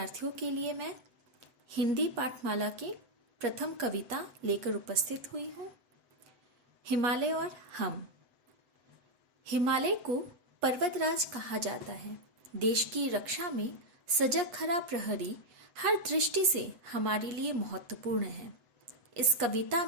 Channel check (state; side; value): late; left; 7.9 ms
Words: के लिए मैं हिंदी पाठमाला की प्रथम कविता लेकर उपस्थित हुई हूँ। हिमालय और हम। हिमालय को पर्वतराज कहा जाता है। देश की रक्षा में सजग खरा प्रहरी हर दृष्टि से हमारे लिए महत्वपूर्ण है। इस कविता